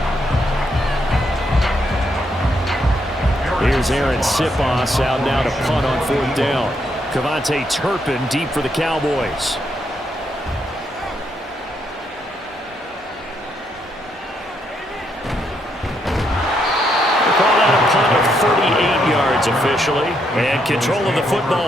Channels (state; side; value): normal; both; correlation 0.77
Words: 1. Here's Aaron Sipos out now to punt on 4th down. Cavante Turpin deep for the Cowboys. Call that a punt of 38 yards officially. And control of the